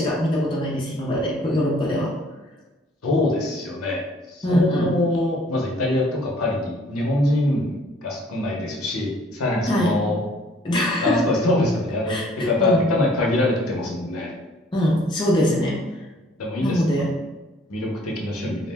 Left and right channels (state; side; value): normal; both; correlation 0.58